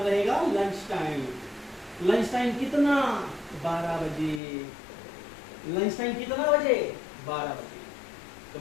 रहेगा, लंच टाइम, लंच टाइम कितना, 12 बजे, लंच टाइम कितना बजे, 12 बजे, तो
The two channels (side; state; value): right; drops out; at 4.4 s